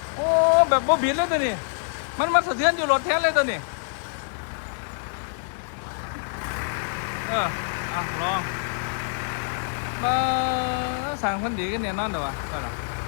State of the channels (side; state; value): right; silent; 57 dB below the other